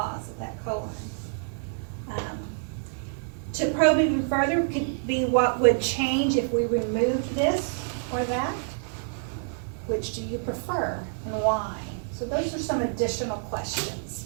at that colon? To probe even further could be what would change if we removed this or that. Which do you prefer and why? So those are some additional questions.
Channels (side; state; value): left; silent; digital silence